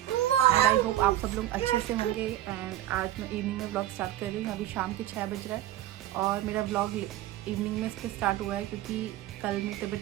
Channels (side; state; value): left; quieter; 13.6 dB